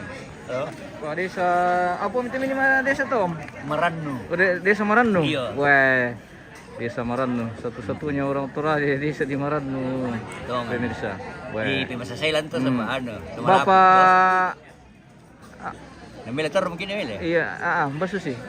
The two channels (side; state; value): both; identical; correlation 1.00